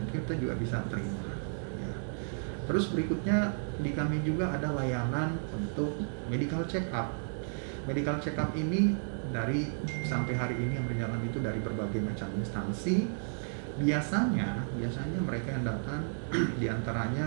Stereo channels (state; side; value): silent; left; digital silence